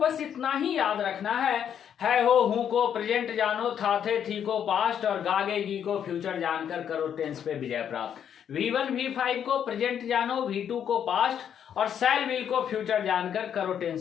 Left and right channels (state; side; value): quieter; right; 8.8 dB